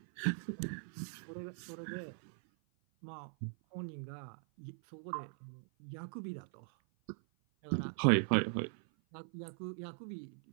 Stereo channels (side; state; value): left; silent; 51 dB below the other